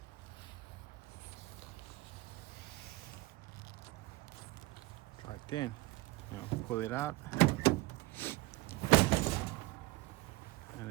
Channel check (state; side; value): quieter; left; 19.4 dB